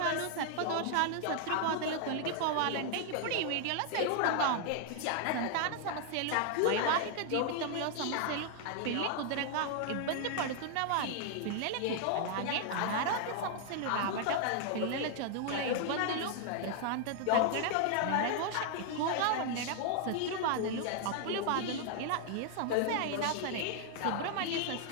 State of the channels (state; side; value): different; both; correlation 0.00